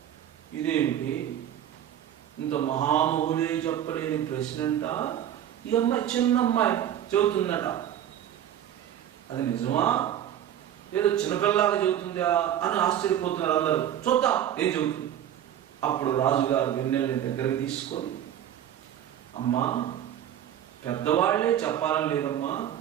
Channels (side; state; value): left; quieter; 10.7 dB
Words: ఇదేమిటి, ఇంత మహామహులే చెప్పలేని ప్రశ్న అంట ఈ అమ్మాయి, చిన్న అమ్మాయి చెబుతుందట. అది నిజమా, ఏదో చిన్నపిల్లలాగా చెబుతుందా అని ఆశ్చర్యపోతున్నారు అందరూ. చూద్దాం ఏం చెబుతుంది. అప్పుడు రాజుగారు వెన్నెల్ని దగ్గరికి తీసుకొని, అమ్మా, పెద్దవాళ్లే చెప్పాలని లేదమ్మా,